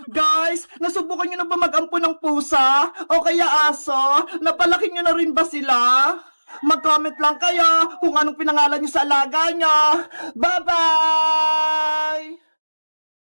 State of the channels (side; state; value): both; inverted; correlation -1.00